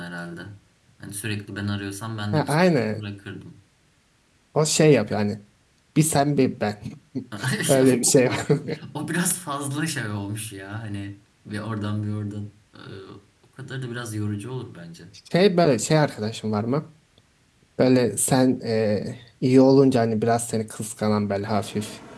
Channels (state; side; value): identical; both; correlation 1.00